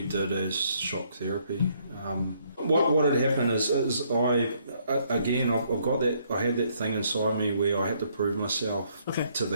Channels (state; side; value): inverted; both; correlation -0.69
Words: did as shock therapy. What had happened is I've got that, I had that thing inside me where I had to prove myself to